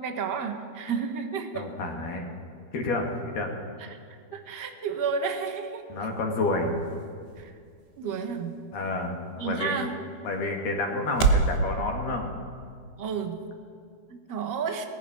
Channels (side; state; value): right; late; 13 ms